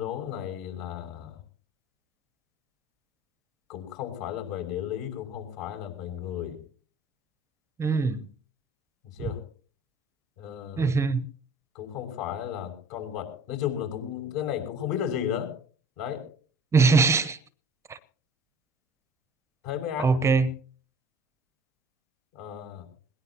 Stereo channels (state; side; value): normal; both; correlation 0.50